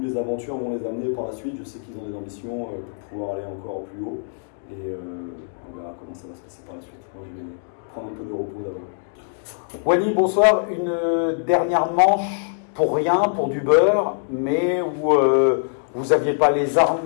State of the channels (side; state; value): right; silent; digital silence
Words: les aventures vont les amener par la suite. Je sais qu'ils ont des ambitions pour pouvoir aller encore plus haut et on verra comment ça va se passer par la suite. Moi, je vais prendre un peu de repos d'abord. Wally, bonsoir. Une dernière manche pour rien, pour du beurre, mais où vous n'aviez pas les